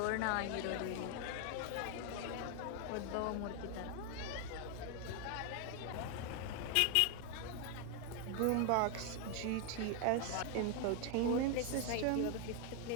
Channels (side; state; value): both; different; correlation 0.01